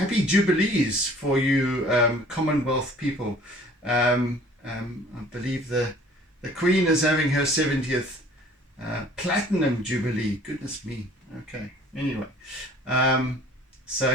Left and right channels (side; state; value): both; normal; correlation 0.52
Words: Jubilees for you Commonwealth people. I believe the Queen is having her 70th Platinum Jubilee. Goodness me. Okay, anyway, so